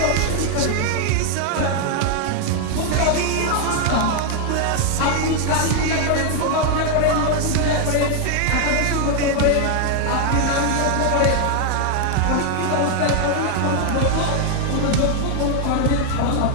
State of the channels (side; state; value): both; different; correlation 0.00